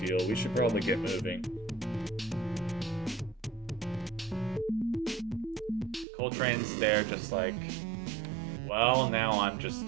We should probably get moving. Coltrane's there just like, well, now I'm just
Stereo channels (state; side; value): drops out; left; at 6.1 s